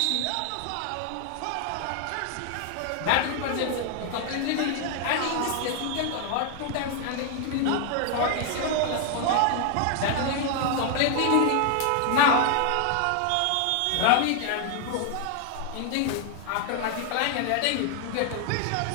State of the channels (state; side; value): different; both; correlation 0.00